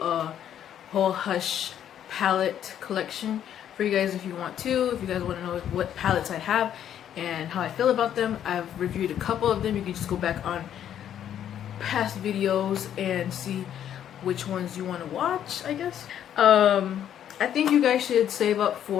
whole Hush palette collection for you guys if you want to. If you guys want to know what palettes I have and how I feel about them, I've reviewed a couple of them. You can just go back on past videos and see which ones you want to watch, I guess. I think you guys should save up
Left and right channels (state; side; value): quieter; right; 10.1 dB